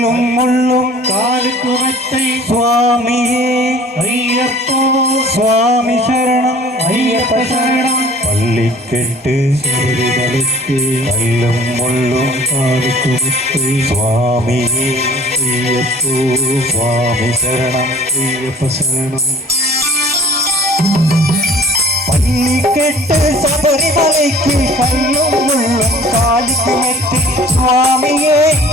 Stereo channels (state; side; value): normal; both; correlation 0.50